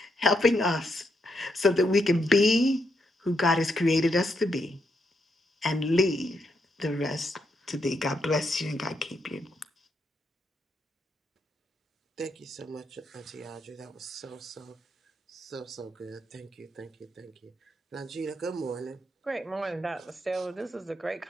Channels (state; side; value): normal; both; correlation 0.80